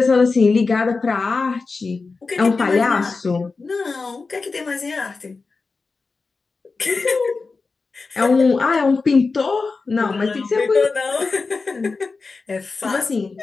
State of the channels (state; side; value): quieter; right; 4.2 dB